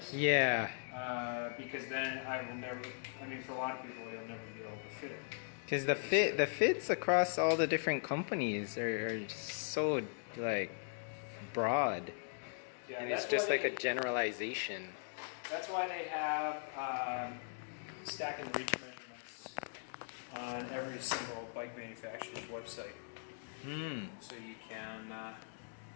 Yeah. Because then I will never, I mean, for a lot of people, they'll never be able to fit it. Because the fits across all the different companies are so like broad. Yeah, and it's just like a generalization. That's why they have stack and reach measurements on every single bike manufacturer's website. So you can,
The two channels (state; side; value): silent; right; digital silence